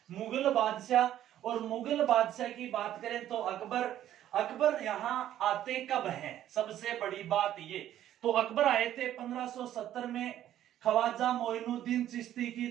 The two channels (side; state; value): left; quieter; 12.0 dB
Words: मुगल बादशाह। और मुगल बादशाह की बात करें तो अकबर। अकबर यहाँ आते कब हैं? सबसे बड़ी बात ये, तो अकबर आए थे 1570 में ख्वाजा मोइनुद्दीन चिश्ती की